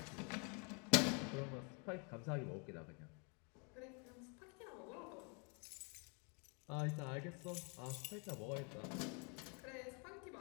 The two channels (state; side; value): quieter; right; 35.6 dB